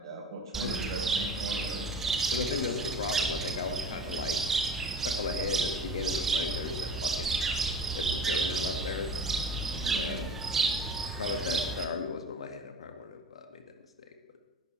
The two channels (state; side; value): normal; both; correlation 0.37